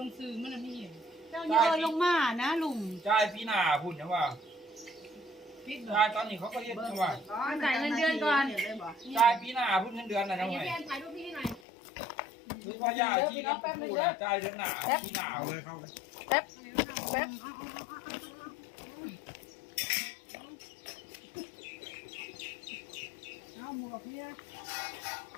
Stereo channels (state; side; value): drops out; right; at 11.6 s